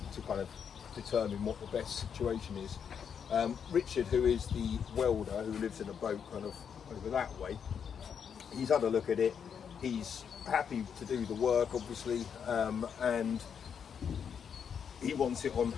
kind of determine what the best situation is. Richard, who is the welder who lives in a boat kind of over that way, he's had a look at it. He's happy to do the work, obviously, and he wants it on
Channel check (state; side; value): quieter; right; 7.4 dB